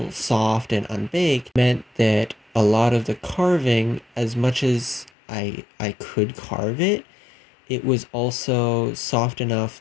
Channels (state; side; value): drops out; right; at 5.1 s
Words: soft and unbaked meant that a lot of the carving, as much as I could carve it, it was also soft enough